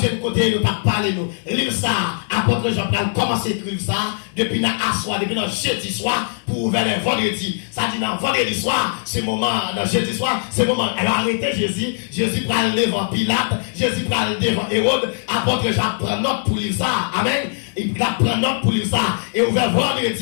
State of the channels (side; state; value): right; silent; digital silence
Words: côté, nous pas parler nous. Livre ça, apôtre Jean-Paul commencé à écrire ça, depuis dans soir, depuis dans jeudi soir, pour vers le vendredi. Ça dit dans vendredi soir, c'est moment, dans jeudi soir, c'est moment. Elle a arrêté Jésus, Jésus prend le devant Pilate, Jésus prend le devant Hérode, apôtre Jean prend note pour lire ça. Amen. Il prend note pour lire ça. Et ouvert